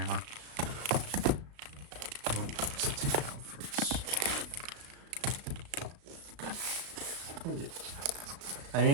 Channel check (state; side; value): late; left; 35 ms